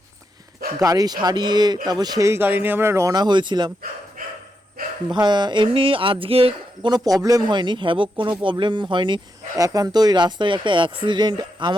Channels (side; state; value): both; normal; correlation 0.84